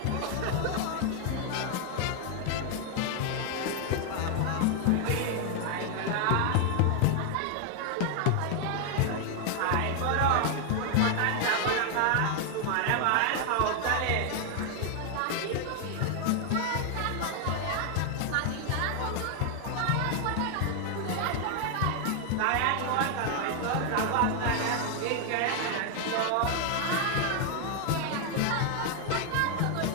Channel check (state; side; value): different; both; correlation 0.00